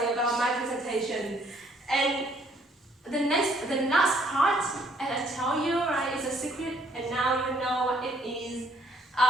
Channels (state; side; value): normal; both; correlation 0.65